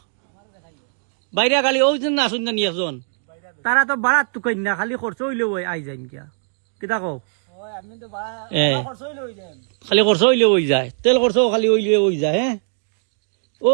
বাইরে গাড়ি ওই জন না শুন একজন তারা তো বাড়াত তো কই না খালি খরচ হইলেও আই যাই কিয়া কিতা কও খালি খরচ হইলেও হয়ে যায় তেল খরচ খালি হইলেও হয়ে যায় হ্যাঁ ও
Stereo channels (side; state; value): left; silent; digital silence